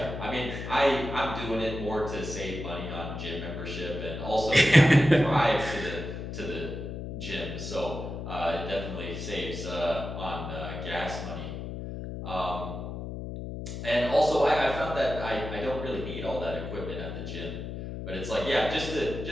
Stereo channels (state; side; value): noise; left; hum, 7 dB below the sound